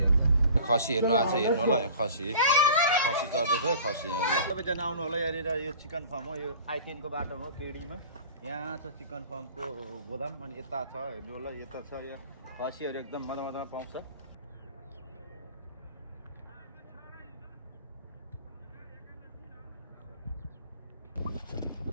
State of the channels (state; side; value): inverted; both; correlation -0.43